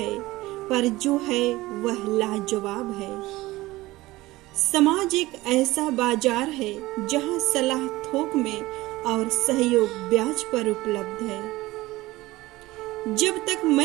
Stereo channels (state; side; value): quieter; left; 18.8 dB